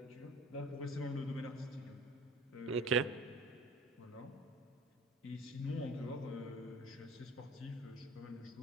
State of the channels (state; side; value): normal; both; correlation 0.43